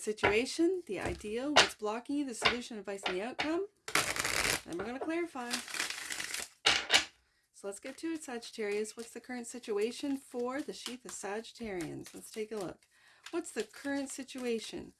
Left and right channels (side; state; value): both; identical; correlation 1.00